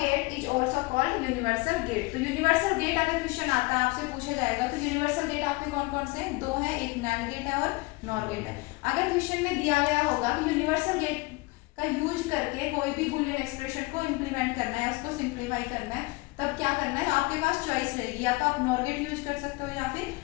is also called universal gate। तो universal gate अगर क्वेश्चन आता है आपसे पूछा जाएगा, तो universal gate आपके कौन कौन से हैं, दो हैं, एक NAND gate है और NOR gate है। अगर क्वेश्चन में दिया गया होगा कि universal gate का यूज करके कोई भी बूलियन एक्सप्रेशन को इंप्लीमेंट करना है, उसको सिंप्लीफाई करना है, तब क्या करना है, आपके पास चॉइस रहेगी, या तो आप नॉर गेट यूज कर सकते हो या फिर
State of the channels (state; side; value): quieter; right; 24.3 dB